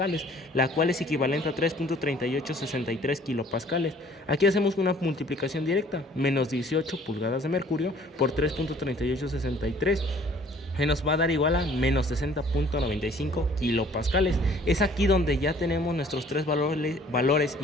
la cual es equivalente a 3.3863 kilopascales. Aquí hacemos una multiplicación directa, menos 18 pulgadas de mercurio por 3.3863. que nos va a dar igual a menos 60.95 kilopascales. Es aquí donde ya tenemos nuestros tres valores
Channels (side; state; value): both; normal; correlation 0.55